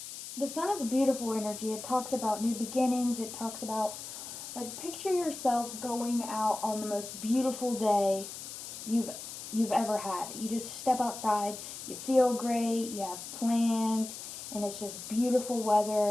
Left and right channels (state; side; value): noise; left; hiss, 10 dB below the sound